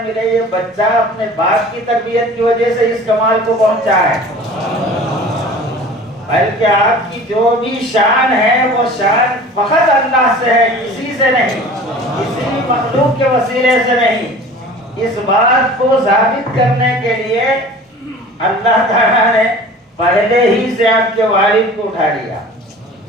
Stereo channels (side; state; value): both; normal; correlation 0.42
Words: ملے یہ بچہ اپنے باپ کی تربیت کی وجہ سے اس کمال کو پہنچا ہے، بلکہ آپ کی جو بھی شان ہے وہ شان فقط اللہ سے ہے، کسی سے نہیں، کسی بھی مخلوق کے وسیلے سے نہیں. اس بات کو ثابت کرنے کے لیے اللہ تعالیٰ نے پہلے ہی سے آپ کے والد کو اٹھا لیا